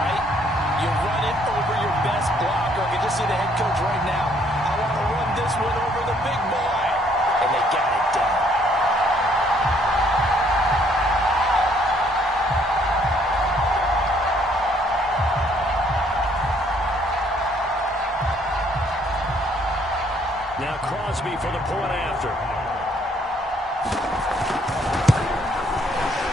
You run it over your best blocker. I can just see the head coach right now. I want to run this one over the big boy. And they got it done.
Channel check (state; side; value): normal; both; correlation 0.65